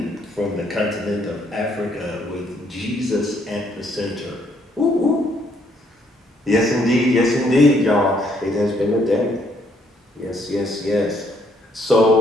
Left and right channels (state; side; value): normal; both; correlation 0.69